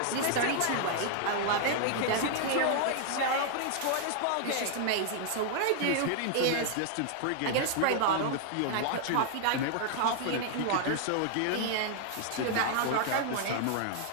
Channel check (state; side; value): different; both; correlation 0.00